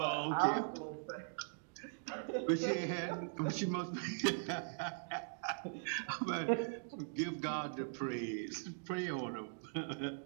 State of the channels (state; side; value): silent; left; digital silence